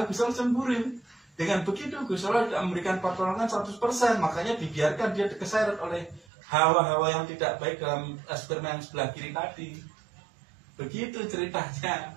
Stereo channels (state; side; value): drops out; left; at 6.2 s